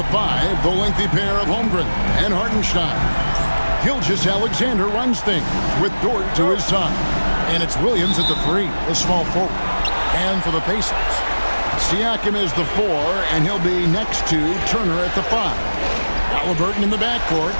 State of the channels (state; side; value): inverted; both; correlation -1.00